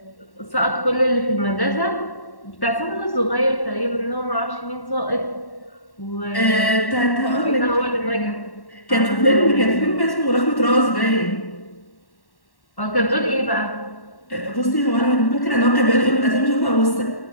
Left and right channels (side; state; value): right; late; 1.1 ms